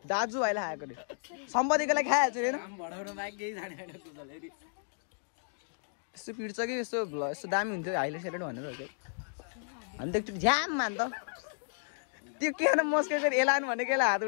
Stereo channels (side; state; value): right; silent; digital silence